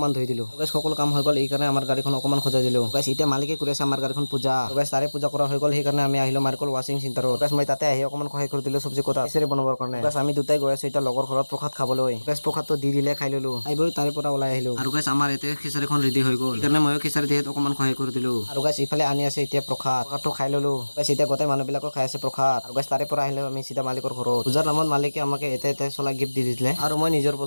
ধুই দিলো। গাইছ সকলো কাম হৈ গ'ল, এইকাৰণে আমাৰ গাড়ীখন অকমান সজাই দিলো। গাইছ এতিয়া মালিকে কৰি আছে আমাৰ গাড়ীখন পূজা। গাইছ তাৰে পূজা কৰা হৈ গ'ল, সেইকাৰণে আমি আহিলো মাৰ্কল ৱাচিং চেণ্টাৰত। গাইছ মই তাতে আহি অকমান সহায় কৰি দিলো চব্জি কটা খিচাৰি বনাবৰ কাৰণে। গাইছ আমি দুটাই গৈ আছো এতিয়া লগৰ ঘৰত প্ৰসাদ খাবলৈ। গাইছ প্ৰসাদটো দি দিলে খাই ললো, খাই বৈ তাৰে পৰা ওলাই আহিলো। আৰু গাইছ আমাৰ এতিয়া খিচাৰিখন ৰেডি হৈ গ'ল, সেইকাৰণে ময়ো খিচাৰি দিয়াত অকমান সহায় কৰি দিলো। আৰু গাইছ ইফালে আনি আছে এতিয়া প্ৰসাদটো খাই ললো। গাইছ এতিয়া গোটেই মানুহবিলাকক খাই আছে প্ৰসাদ। আৰু গাইছ তাৰে পৰা আহিলো আমি চিধা মালিকৰ ঘৰত। পূজাৰ নামত মালিকে আমাক এটা চলা গিফ্ট দি দিলে আৰু মই নিজৰ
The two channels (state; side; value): inverted; both; correlation -1.00